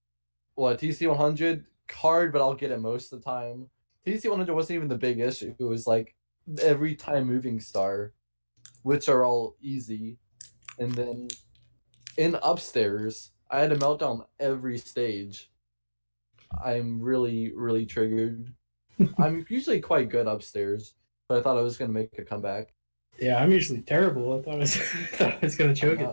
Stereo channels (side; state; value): both; inverted; correlation -1.00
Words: what TC 100 hard, but I'll get it most of the time. TC 100 wasn't even the big issue. It was like every time moving star, which are all easy. And then in upstairs, I had a meltdown every stage. I'm really, really triggered. I'm usually quite good upstairs, but I thought I was gonna make a comeback. Yeah, I'm usually terrible. I thought I was gonna choke it